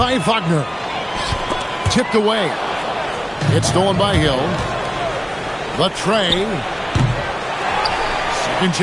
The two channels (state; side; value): identical; both; correlation 1.00